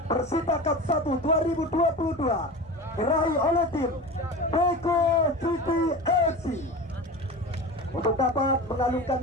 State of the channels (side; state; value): both; normal; correlation 0.30